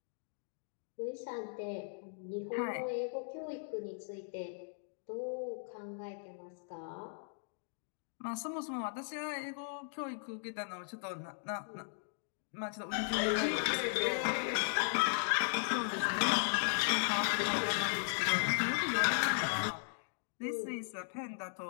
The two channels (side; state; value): right; silent; digital silence